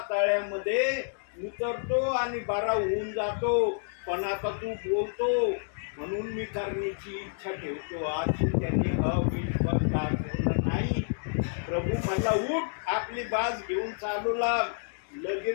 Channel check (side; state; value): right; silent; digital silence